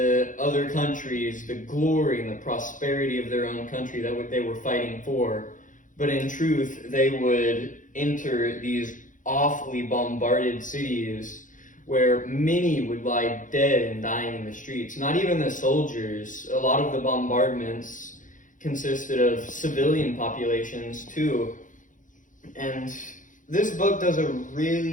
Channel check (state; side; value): late; right; 0.38 ms